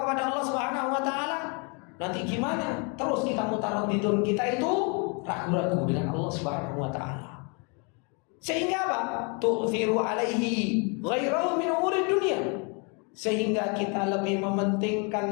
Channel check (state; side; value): quieter; right; 34.4 dB